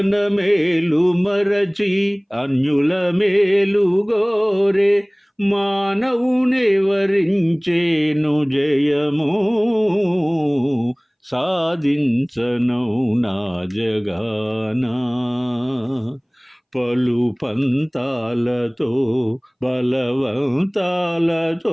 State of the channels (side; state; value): both; identical; correlation 1.00